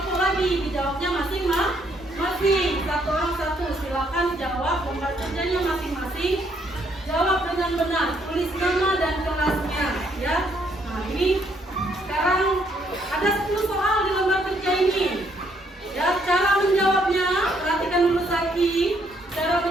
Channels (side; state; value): both; normal; correlation 0.70